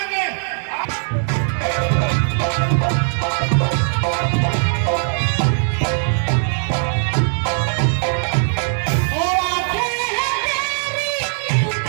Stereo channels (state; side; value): silent; left; digital silence